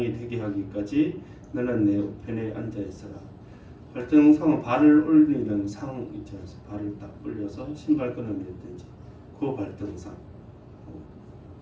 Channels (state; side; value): identical; both; correlation 1.00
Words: 되게 하기까지 너는 내 우편에 앉아 있어라. 발등상은 발을 올리는 상 있지 않습니까? 발을 딱 올려서 신발끈을 맺든지 그 발등상,